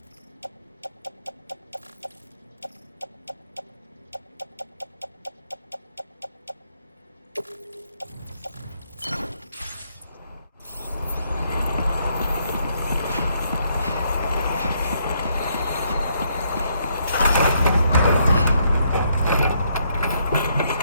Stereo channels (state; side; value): inverted; both; correlation -0.73